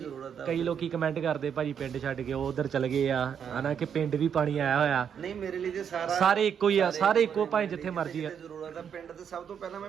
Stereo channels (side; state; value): left; quieter; 7.9 dB